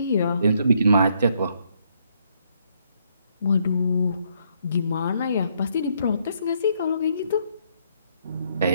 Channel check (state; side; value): inverted; both; correlation -0.72